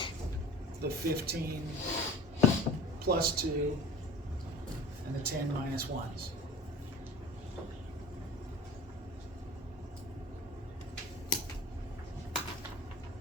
The 15 plus 2 and the 10 minus 1s.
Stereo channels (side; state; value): both; normal; correlation 0.40